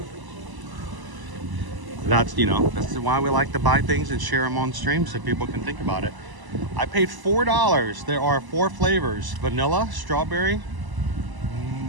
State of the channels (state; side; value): late; left; 1.0 ms